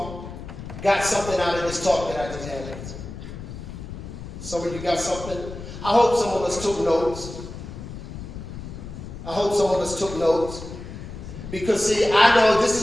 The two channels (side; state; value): left; noise; rumble, 11 dB below the sound